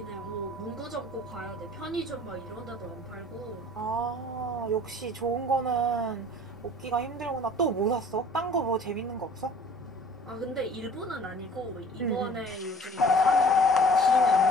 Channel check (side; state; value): both; normal; correlation 0.49